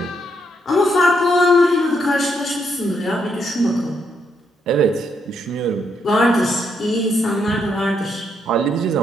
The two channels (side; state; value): both; normal; correlation 0.77